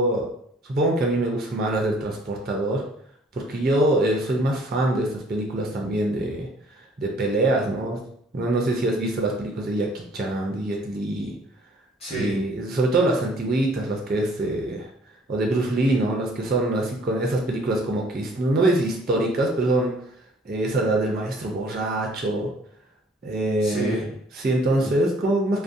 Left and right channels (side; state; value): both; normal; correlation 0.58